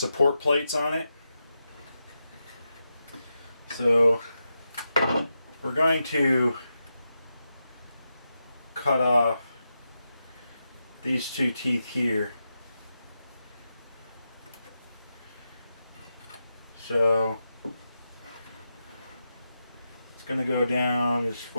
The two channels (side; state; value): both; inverted; correlation -0.88